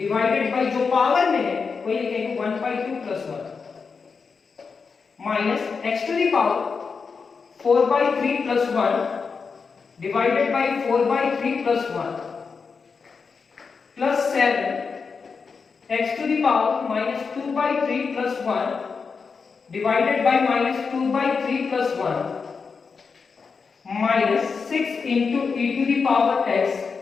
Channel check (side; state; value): right; quieter; 5.2 dB